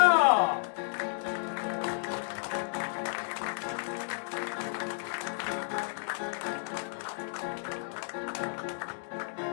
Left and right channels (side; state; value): right; silent; digital silence